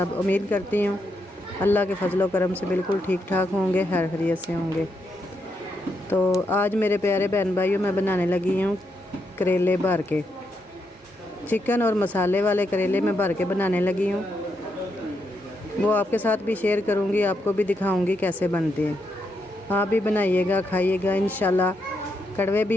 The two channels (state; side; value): normal; both; correlation 0.81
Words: उम्मीद करती हूँ अल्लाह के फजलो करम से बिल्कुल ठीक ठाक होंगे, खैर खैरियत से होंगे। तो आज मेरे प्यारे बहन भाइयों मैं बनाने लगी हूँ करेले भर के, चिकन और मसाले वाले करेले मैं भर के बनाने लगी हूँ। वो आपके साथ भी शेयर करूँगी, आपको भी दिखाऊँगी कैसे बनते हैं। आप भी बनाइएगा, खाइएगा, इंशाल्लाह कड़वे